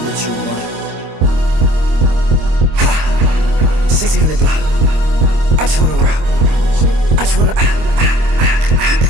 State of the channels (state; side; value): late; left; 25 ms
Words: what you want. 1600 block. I just wanna rock. I just wanna.